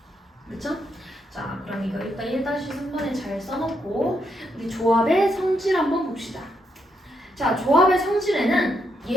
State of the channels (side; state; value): both; normal; correlation 0.79